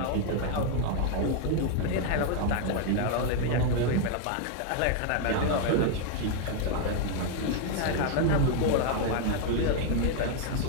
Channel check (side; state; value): both; different; correlation 0.00